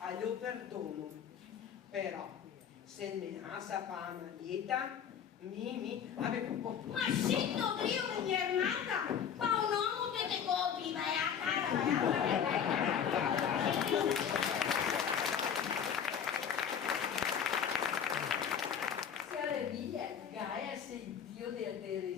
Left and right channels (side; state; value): right; quieter; 8.1 dB